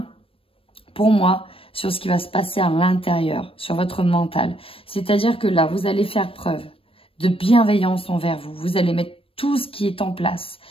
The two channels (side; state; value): right; late; 0.27 ms